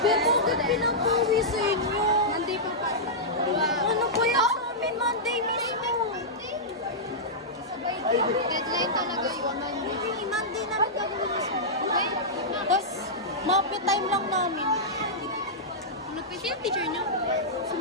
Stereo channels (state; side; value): normal; both; correlation -0.11